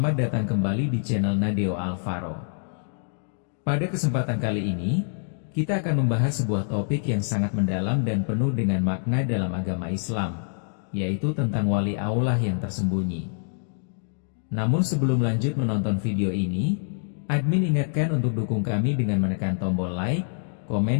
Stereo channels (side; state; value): right; silent; digital silence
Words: datang kembali di channel Nadeo Alvaro. Pada kesempatan kali ini, kita akan membahas sebuah topik yang sangat mendalam dan penuh dengan makna dalam agama Islam, yaitu tentang wali Allah yang tersembunyi. Namun sebelum lanjut menonton video ini, admin ingatkan untuk dukung kami dengan menekan tombol like,